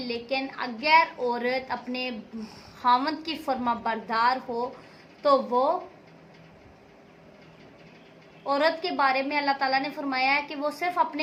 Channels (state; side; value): identical; both; correlation 1.00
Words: اگر عورت اپنے خاوند کی فرما بردار ہو تو وہ عورت کے بارے میں اللہ تعالیٰ نے فرمایا ہے کہ وہ صرف